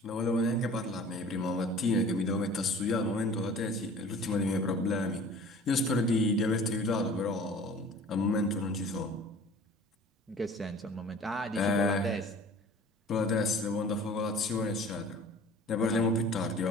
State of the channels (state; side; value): normal; both; correlation 0.45